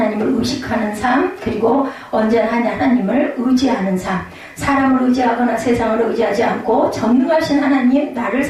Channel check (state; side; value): identical; both; correlation 1.00